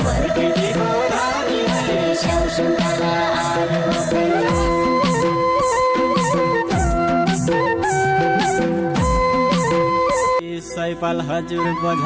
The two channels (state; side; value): identical; both; correlation 1.00